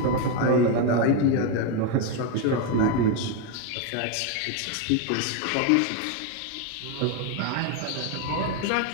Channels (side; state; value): both; different; correlation 0.02